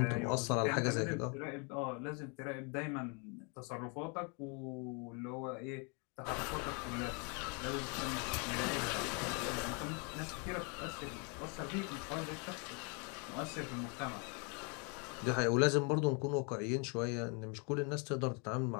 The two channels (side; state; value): right; quieter; 34.7 dB